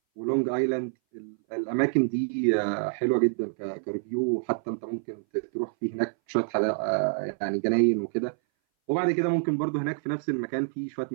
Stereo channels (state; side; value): silent; left; 59 dB below the other